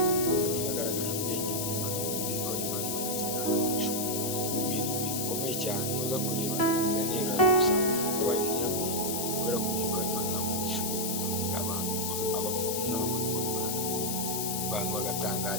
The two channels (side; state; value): left; noise; hiss, 1 dB below the sound